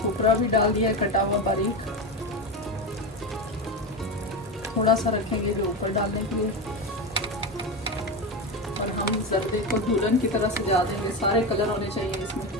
भी डाल दिया है कटा हुआ बारीक। थोड़ा सा रखेंगे जो ऊपर डालने के लिए। और हम जर्दे को दुल्हन की तरह सजा देंगे, सारे कलर होने चाहिए इसमें।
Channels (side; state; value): both; normal; correlation 0.18